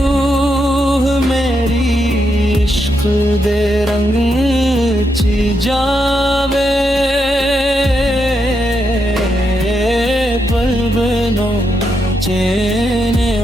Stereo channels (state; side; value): normal; both; correlation 0.81